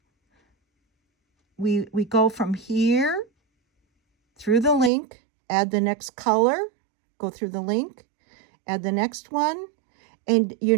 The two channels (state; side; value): drops out; left; at 4.9 s